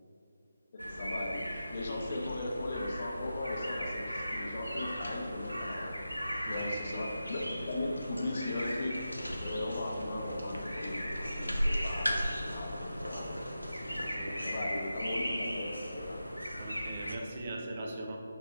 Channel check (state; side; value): inverted; both; correlation -0.90